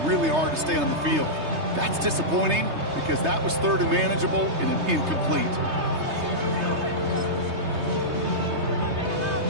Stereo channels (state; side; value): late; left; 3.3 ms